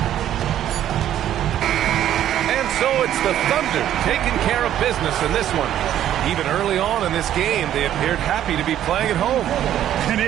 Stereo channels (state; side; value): quieter; left; 11.4 dB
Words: So it's the Thunder taking care of business in this one. Even early on in this game, they appeared happy to be playing at home. And